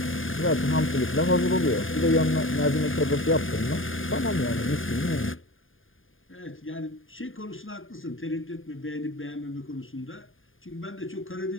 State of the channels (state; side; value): late; right; 0.59 ms